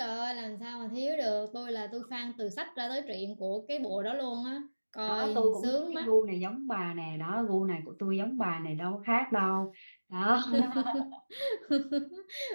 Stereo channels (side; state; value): both; inverted; correlation -1.00